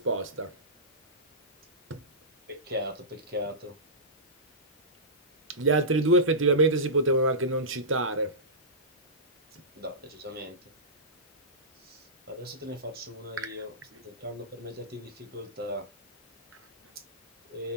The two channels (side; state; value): both; normal; correlation -0.18